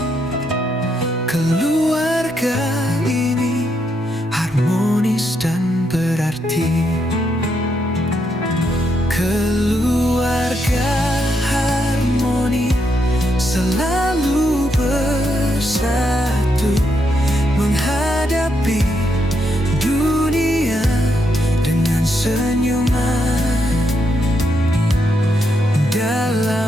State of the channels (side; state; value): both; normal; correlation 0.79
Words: Keluarga ini harmonis dan berarti. Keluarga harmoni selalu bersatu, menghadapi dunia dengan senyuman.